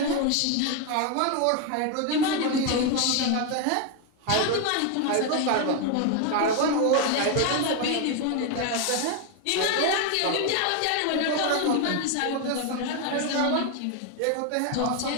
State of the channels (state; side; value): different; both; correlation 0.01